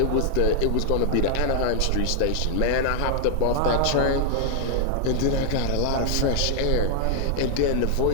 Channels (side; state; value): both; different; correlation 0.00